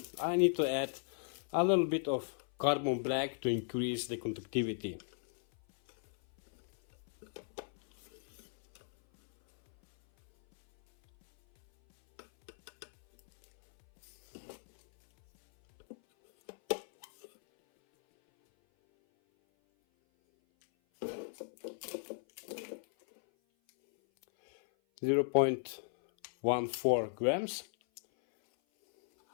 I need to add a little bit of carbon black to increase the conductivity. Zero 0.14 grams.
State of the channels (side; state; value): right; silent; 54 dB below the other